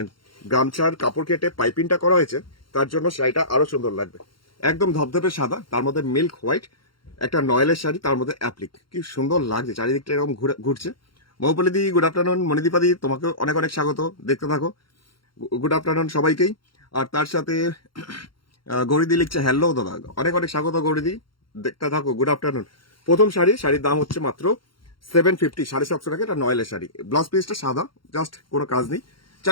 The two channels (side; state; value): right; late; 0.73 ms